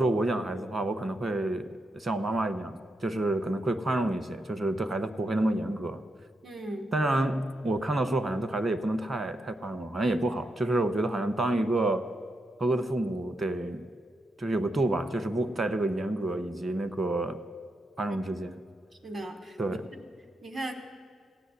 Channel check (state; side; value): normal; both; correlation 0.84